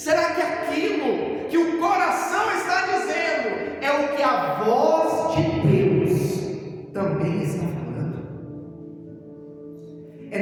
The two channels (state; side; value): identical; both; correlation 1.00